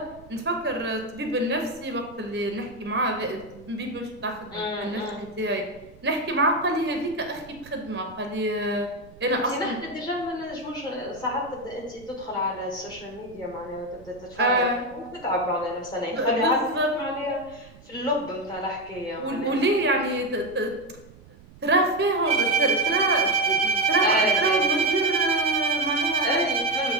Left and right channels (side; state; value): right; noise; rumble, 22 dB below the sound